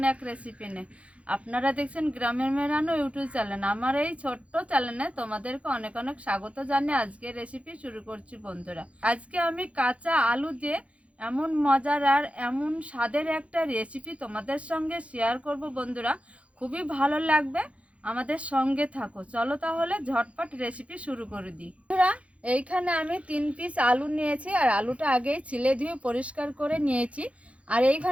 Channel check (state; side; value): late; left; 0.063 ms